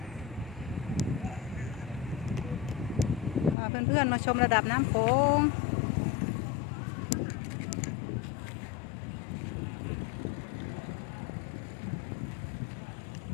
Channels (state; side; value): drops out; right; at 3.6 s